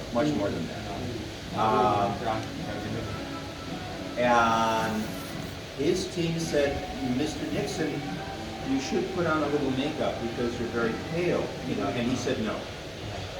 that. And his team said, Mr. Nixon, you should put on a little makeup because you're very pale, you know, and he said no.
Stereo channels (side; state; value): both; identical; correlation 1.00